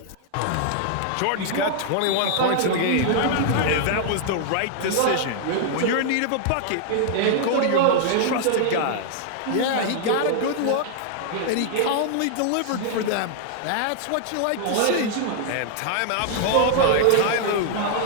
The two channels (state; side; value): different; both; correlation -0.01